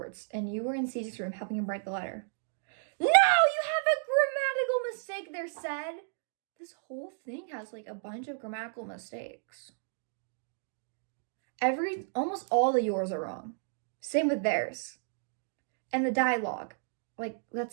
and you were in Cedric's room helping him write the letter. No, you have a grammatical mistake there, said. This whole thing has like a bunch of grammatical mistakes. Almost all of yours are wrong. Same with theirs. And the dialogue. Like,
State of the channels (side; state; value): left; silent; digital silence